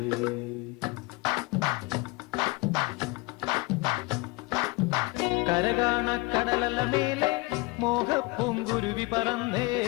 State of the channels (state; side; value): quieter; right; 24.8 dB